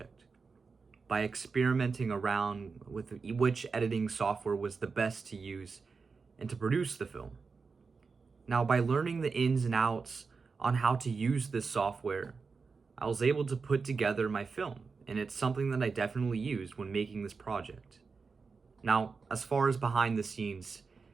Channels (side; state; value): left; quieter; 4.8 dB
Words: by experimenting around with which editing software was the best to use and to produce the film. Now, by learning the ins and outs on how to use this software, I was able to put together my film, and it's something that I definitely used when making this project. Now, as far as behind the scenes,